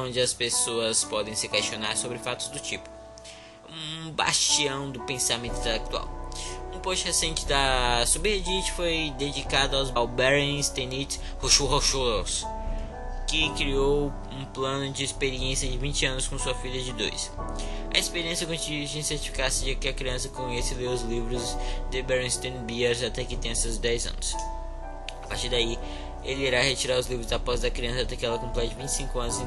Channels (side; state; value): both; identical; correlation 1.00